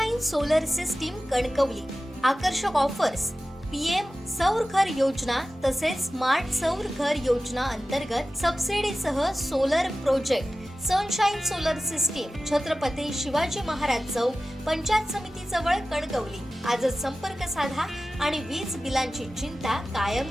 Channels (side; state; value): both; normal; correlation 0.95